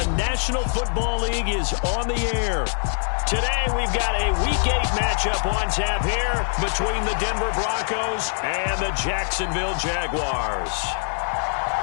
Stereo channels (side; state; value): right; silent; digital silence